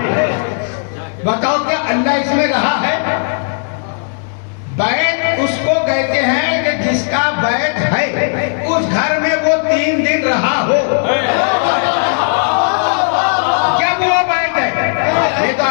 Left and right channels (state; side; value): silent; right; 60 dB below the other